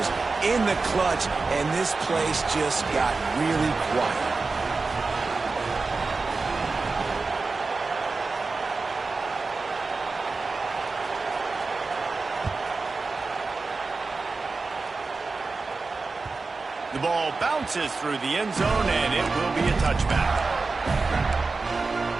in the clutch, and this place just got really quiet. The ball bounces through the end zone, and it will be a touchback.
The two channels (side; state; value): left; quieter; 4.0 dB